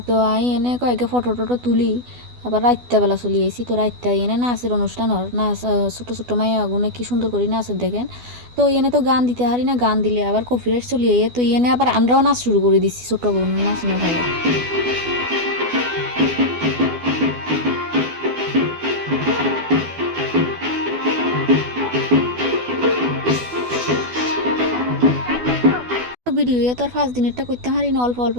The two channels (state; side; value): late; left; 12 ms